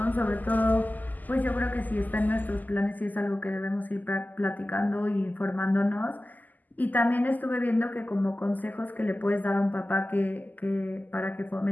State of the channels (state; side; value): late; right; 0.083 ms